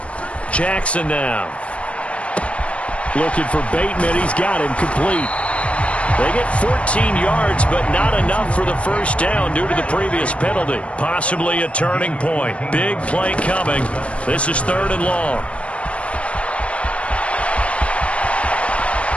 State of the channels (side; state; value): right; late; 0.062 ms